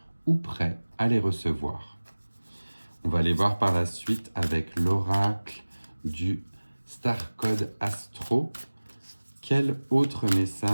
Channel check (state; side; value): inverted; both; correlation -1.00